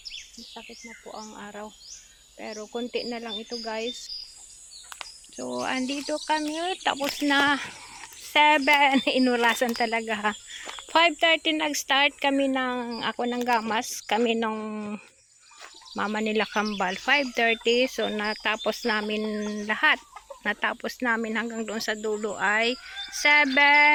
Masakit na po ang araw. Pero konti na lang ito guys. So, andito kami, tapos na 7. Inurasan talaga ha. 5:30 nag-start kami ako ng gamas. Kami nung mama nila Kambal. 5:30. So, natapos namin lahat. Natapos namin hanggang doon sa dulo ay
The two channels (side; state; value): both; identical; correlation 1.00